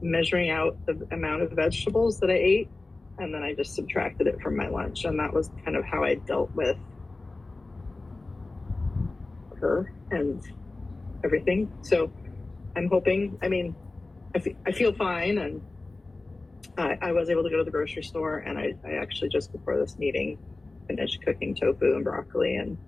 measuring out the amount of vegetables that I ate, and then I just subtracted it from my lunch. And that was kind of how I dealt with her and everything. So I'm hoping, I feel fine, and I was able to go to the grocery store, and I actually just before this meeting finished cooking tofu and broccoli and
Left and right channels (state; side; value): quieter; right; 3.2 dB